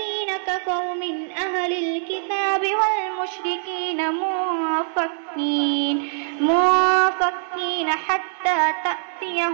كفروا من أهل الكتاب والمشركين منفكين حتى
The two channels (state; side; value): silent; left; 64 dB below the other